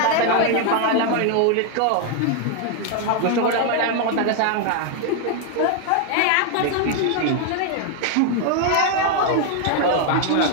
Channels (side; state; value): both; different; correlation 0.00